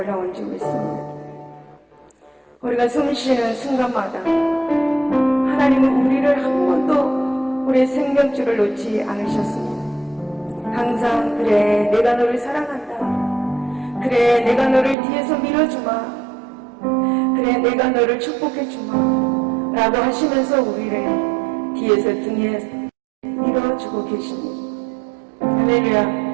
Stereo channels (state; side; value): drops out; left; at 15.0 s